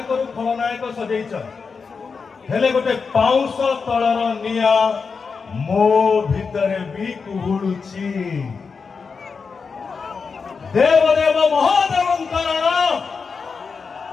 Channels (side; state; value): right; quieter; 5.2 dB